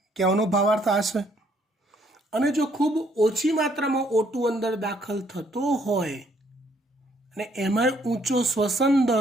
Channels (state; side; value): normal; both; correlation 0.67